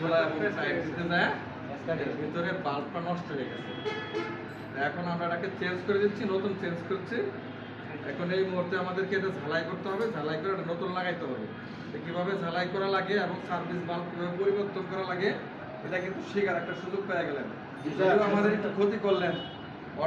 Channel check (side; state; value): both; identical; correlation 1.00